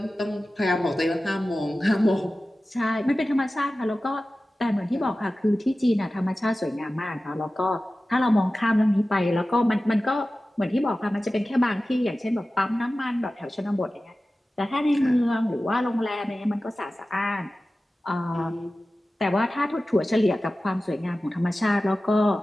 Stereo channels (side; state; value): both; normal; correlation 0.95